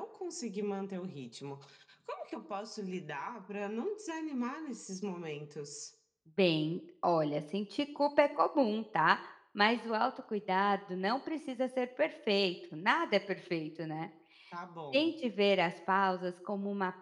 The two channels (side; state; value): both; identical; correlation 1.00